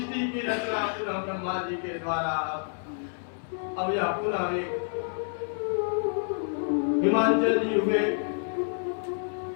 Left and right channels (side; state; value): right; silent; 59 dB below the other